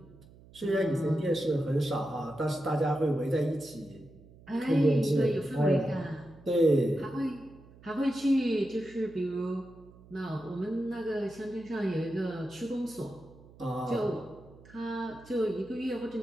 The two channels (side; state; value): right; noise; hum, 23 dB below the sound